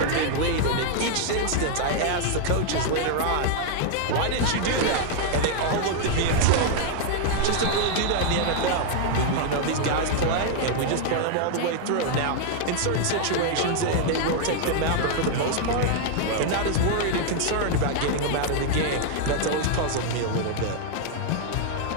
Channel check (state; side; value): different; both; correlation 0.00